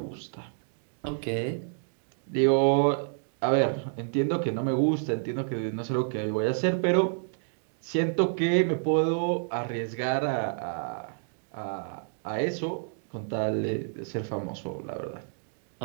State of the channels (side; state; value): left; silent; digital silence